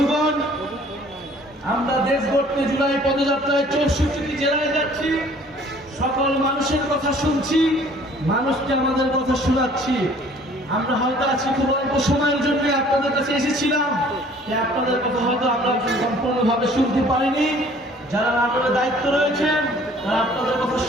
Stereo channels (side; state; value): both; normal; correlation 0.54